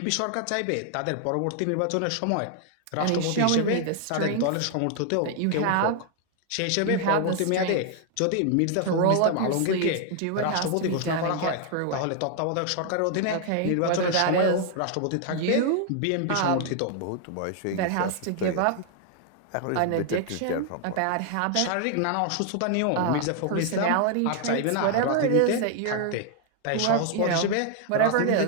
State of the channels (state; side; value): different; both; correlation 0.00